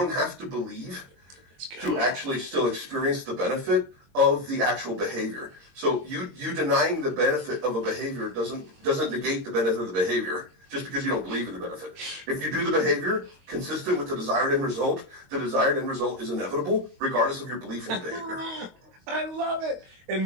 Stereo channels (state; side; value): late; left; 22 ms